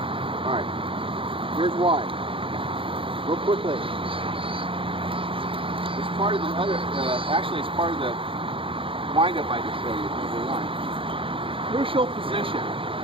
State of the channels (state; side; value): late; left; 0.26 ms